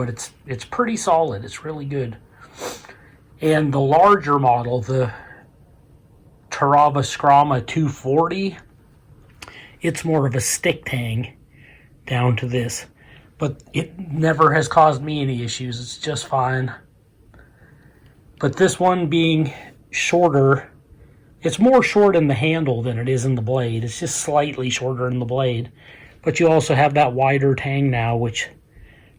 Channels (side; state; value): both; identical; correlation 1.00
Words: it's pretty solid. It's really good. And the larger model, the Terava Skrama 240, it's more of a stick tang down to this. But it never has caused me any issues. It's just fine. But this one being shorter, it's more short in the handle than it is in the blade. It's just slightly shorter in the blade. But you also have that wider tang now, which